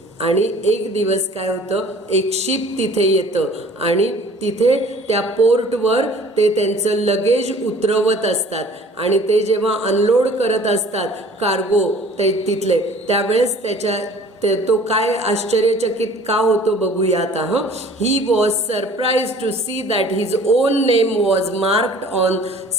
आणि एक दिवस काय होतं, एक शिप तिथे येतं आणि तिथे त्या पोर्टवर ते त्यांचं लगेज उतरवत असतात आणि ते जेव्हा अनलोड करत असतात कार्गो ते तिथले, त्यावेळेस तो काय आश्चर्यचकित का होतो बघूया आता. He was surprise to see that his own name was marked on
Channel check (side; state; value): both; normal; correlation 0.49